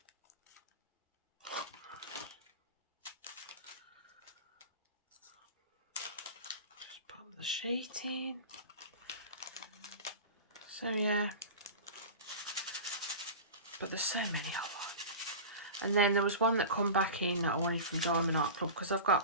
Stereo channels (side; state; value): both; inverted; correlation -0.31